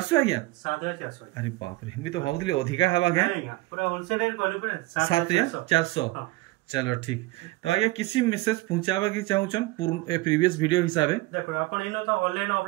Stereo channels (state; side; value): quieter; left; 20.4 dB